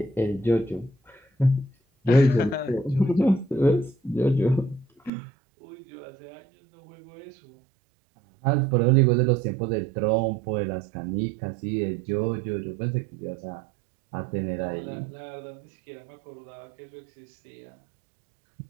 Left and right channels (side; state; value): left; drops out; at 5.1 s